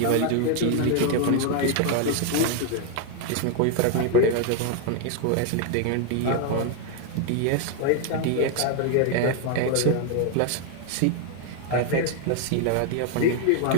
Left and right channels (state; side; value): different; both; correlation 0.00